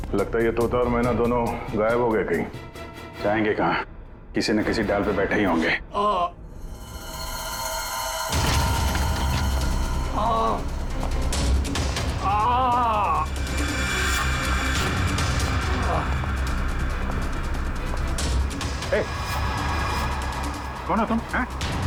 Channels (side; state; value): both; identical; correlation 1.00